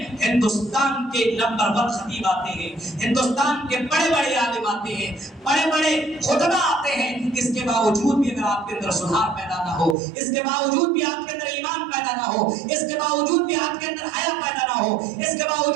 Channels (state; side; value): drops out; left; at 10.0 s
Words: ہندوستان کے نمبر 1 خطیب آتے ہیں, ہندوستان کے بڑے بڑے عالم آتے ہیں, بڑے بڑے خطبہ آتے ہیں. اس کے باوجود بھی اگر آپ کے اندر سدھار پیدا نہ ہو, اس کے باوجود بھی آپ کے اندر ایمان پیدا نہ ہو, اس کے باوجود بھی آپ کے اندر حیا پیدا نہ ہو, اس کے